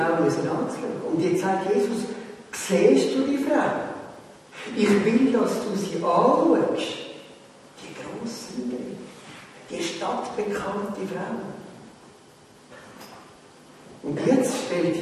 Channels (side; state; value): both; identical; correlation 1.00